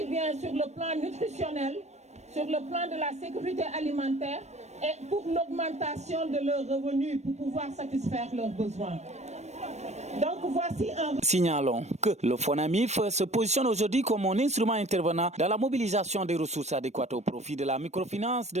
bien sur le plan nutritionnel, sur le plan de la sécurité alimentaire et pour l'augmentation de leurs revenus pour pouvoir satisfaire leurs besoins. Donc voici un... Signalons que le FONAMIF se positionne aujourd'hui comme un instrument intervenant dans la mobilisation des ressources adéquates au profit de la microfinance,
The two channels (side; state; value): left; late; 0.32 ms